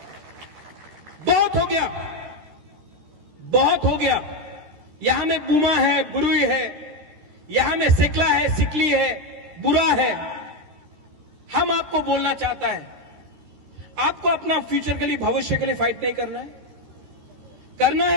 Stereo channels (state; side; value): late; left; 13 ms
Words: बहुत हो गया, बहुत हो गया। यहां में बुमा है, बुरुई है, यहां में सिकला है, सिकली है, बुरा है। हम आपको बोलना चाहता है, आपको अपना फ्यूचर के लिए, भविष्य के लिए फाइट नहीं करना है? करना